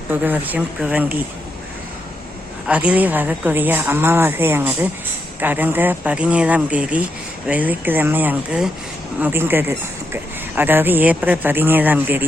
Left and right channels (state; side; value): normal; both; correlation 0.81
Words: புது வருஷம் குவங்கி. அதிலே வரக்கூடிய அமாவாசையானது கடந்த 17ஆம் தேதி வெள்ளிக்கிழமை அன்று முடிந்தது. அதாவது ஏப்ரல் 17ஆம் தேதி